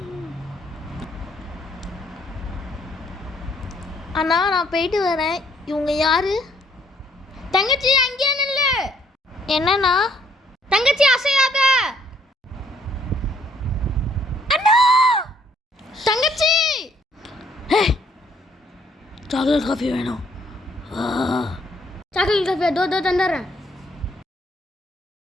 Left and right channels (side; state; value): both; normal; correlation 0.65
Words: அண்ணா நான் போயிட்டு வரேன். இவங்க யாரு? தங்கச்சி அங்கேயே நில்லு. என்னண்ணா? தங்கச்சி அசையாத. அண்ணா தங்கச்சி சாக்லேட் காஃபி வேணும். சாக்லேட் காஃபி தோ தந்துடுறேன்.